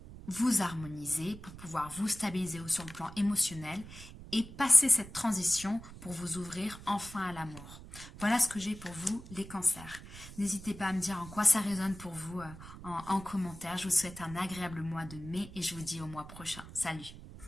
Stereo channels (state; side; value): noise; right; rumble, 15 dB below the sound